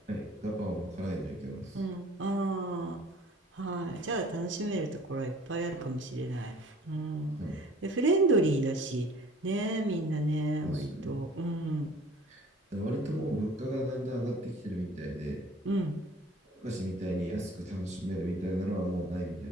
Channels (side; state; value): both; normal; correlation 0.49